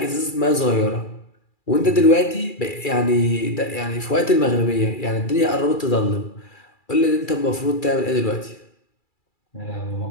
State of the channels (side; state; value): right; late; 2.3 ms